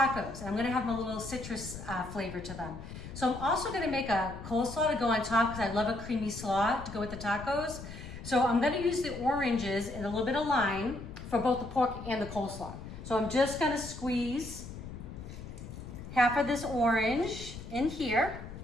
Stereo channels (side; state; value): left; noise; rumble, 11 dB below the sound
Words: I'm gonna have a little citrus flavor to them. So I'm also gonna make a coleslaw to go on top because I love a creamy slaw to go with the tacos. So I'm gonna use the oranges and a little bit of lime for both the pork and the coleslaw. So I'm just gonna squeeze half of this orange in here,